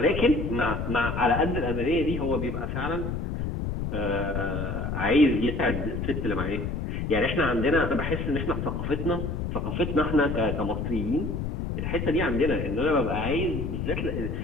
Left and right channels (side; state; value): left; noise; rumble, 3 dB below the sound